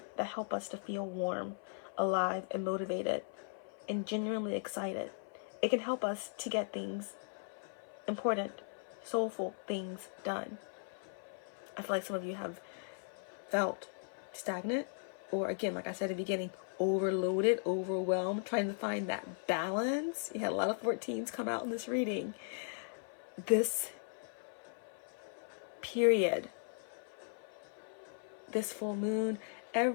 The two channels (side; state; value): right; silent; 53 dB below the other